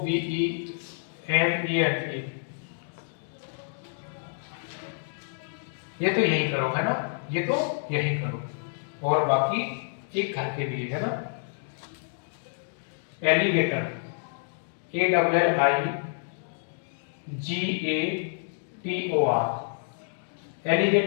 ये तो यही करो है ना, ये तो यही करो, और बाकी एक घर के लिए है ना। एलिगेटर ALLIGATOR,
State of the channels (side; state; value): right; silent; digital silence